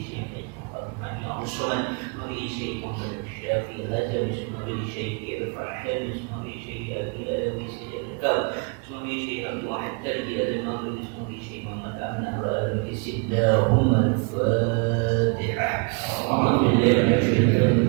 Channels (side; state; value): left; quieter; 33.6 dB